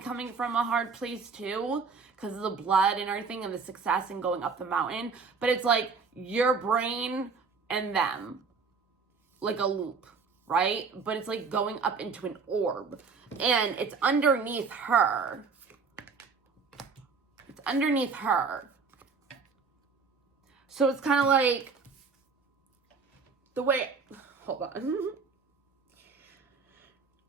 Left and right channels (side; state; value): left; quieter; 5.1 dB